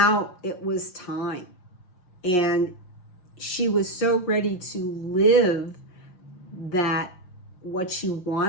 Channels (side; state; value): right; late; 5.7 ms